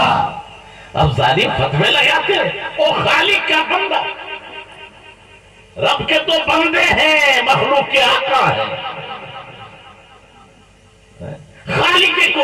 اب ظالم فتوے لگاتے ہیں وہ خالق کا بندہ، رب کے تو بندے ہیں، مخلوق کے آقا ہیں، خالق کے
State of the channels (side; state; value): both; identical; correlation 1.00